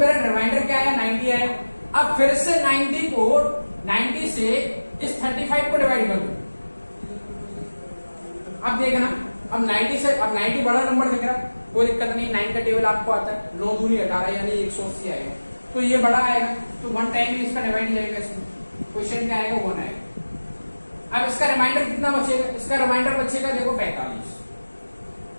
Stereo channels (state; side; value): inverted; both; correlation -1.00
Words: रिमाइंडर क्या आया, 90 आया। अब फिर से 90 से इस 35 को डिवाइड कर दो। अब देखना, अब 90 बड़ा नंबर दिख रहा है, कोई दिक्कत नहीं, 9 का टेबल आपको आता है, 9 दूनी 18 यानी 180 आएगा, तो ये बड़ा आएगा, तो 1 टाइम ही इसका डिवाइड जाएगा, इसमें क्वेश्चन क्या आएगा 1 आएगा। अब इसका रिमाइंडर कितना बचेगा, इसका रिमाइंडर बचेगा देखो 45